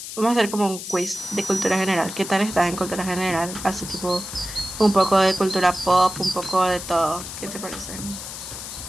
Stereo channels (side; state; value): left; noise; hiss, 9 dB below the sound